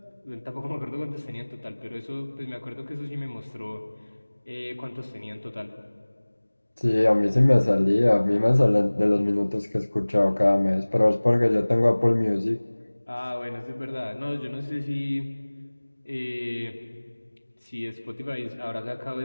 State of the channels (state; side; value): inverted; both; correlation -1.00